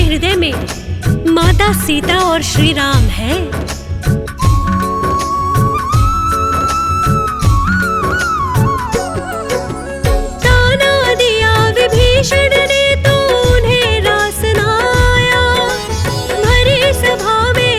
हृदय में माता सीता और श्री राम है? ताना दिया विभीषण ने तो उन्हें रास न आया, भरी सभा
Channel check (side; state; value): both; identical; correlation 1.00